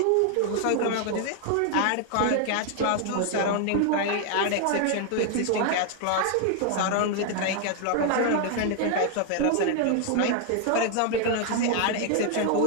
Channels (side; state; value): both; different; correlation 0.00